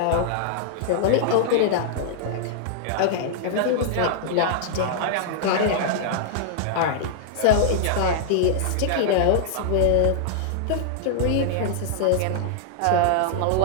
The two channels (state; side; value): different; both; correlation -0.01